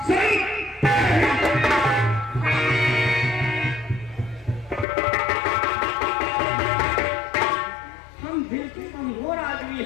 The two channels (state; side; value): drops out; right; at 4.9 s